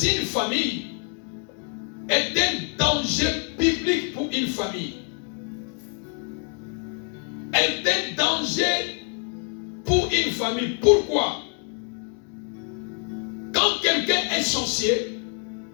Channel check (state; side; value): quieter; right; 36.7 dB